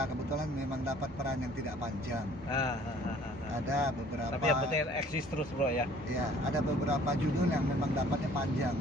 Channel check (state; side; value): normal; both; correlation 0.55